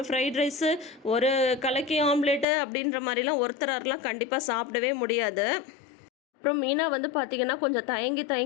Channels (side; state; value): right; drops out; at 2.5 s